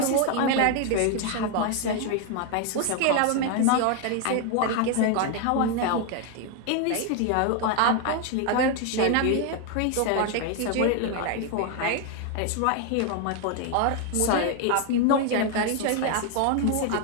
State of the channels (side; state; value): both; different; correlation 0.01